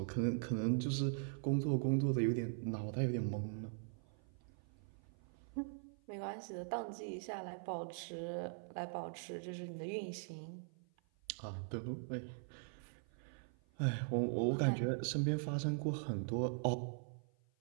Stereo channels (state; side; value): silent; left; 50 dB below the other